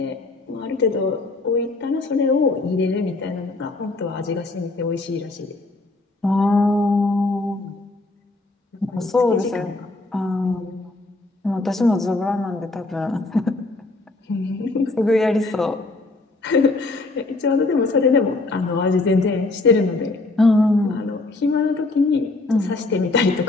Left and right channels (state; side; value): quieter; right; 3.1 dB